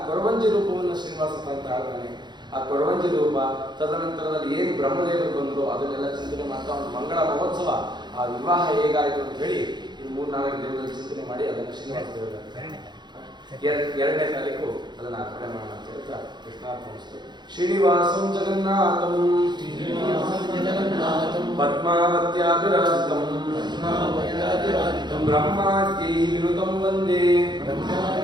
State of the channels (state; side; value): late; left; 0.21 ms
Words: ಕೊರವಂಜಿ ರೂಪವನ್ನು ಶ್ರೀನಿವಾಸ ಅಂತ ಆಡ್ತಾನೆ. ಆ ಕೊರವಂಜಿ ರೂಪ, ತದನಂತರದಲ್ಲಿ ಏನು ಬ್ರಹ್ಮದೇವರು ಬಂದರು ಅದನ್ನೆಲ್ಲ ಚಿಂತನೆ ಮಾಡ್ತಾ ಒಂದು ಮಂಗಳ ಮಹೋತ್ಸವ, ಆ ವಿವಾಹ ಹೇಗಾಯಿತು ಅಂತ ಹೇಳಿ ಇದು 3-4 ದಿನದಲ್ಲಿ ಚಿಂತನೆ ಮಾಡಿ ಅದನ್ನು ಶ್ರೀನಿವಾಸ ದೇವರ 2ನೇ ತಾರೀಕು ಅದನ್ನು ಅರ್ಪಣೆ ಮಾಡೋಣ ಅಂತ ಹೇಳ್ತಾ ಕೃಷ್ಣಾರ್ಪಣಿಸ್ತು. ಶ್ರೀನಿವಾಸಂ ಜಗನ್ನಾಥಂ ಪದ್ಮಾವತ್ಯಾಭಿರಾಜಿತಂ ಬ್ರಹ್ಮಾದ್ಯೈ ವಿನುತಂ ವಂದೇ